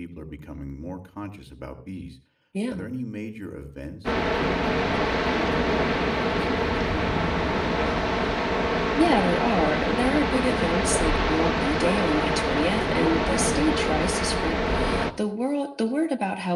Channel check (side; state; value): both; identical; correlation 1.00